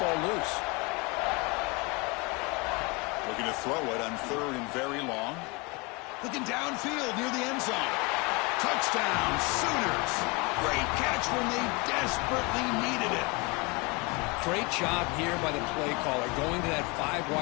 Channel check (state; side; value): quieter; right; 27.8 dB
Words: loose. Looking to throw it on third and very long. Looking downfield near the end zone. Touchdown, Sooners. Great catch when they desperately needed it. Great job here by the play caller going to that 5